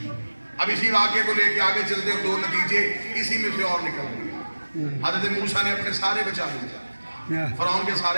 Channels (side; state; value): both; inverted; correlation -1.00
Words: اب اسی واقعے کو لے کے آگے چلتے اور 2 نتیجے اسی میں سے اور نکل گئے حضرت موسیٰ نے اپنے سارے بچا لیا فرعون کے